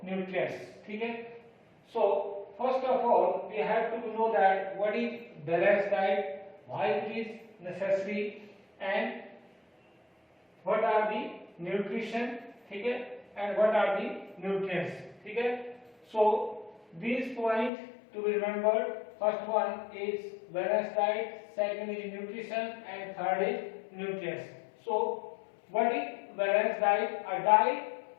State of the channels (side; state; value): right; drops out; at 17.7 s